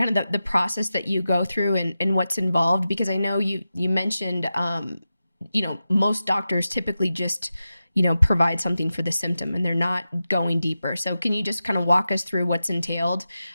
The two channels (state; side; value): inverted; both; correlation -0.92